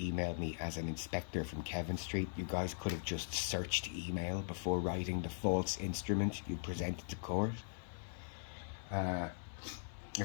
me as an inspector from Kevin Street. You guys could have just searched email before writing the false instrument you presented to court.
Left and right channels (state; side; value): silent; right; 51 dB below the other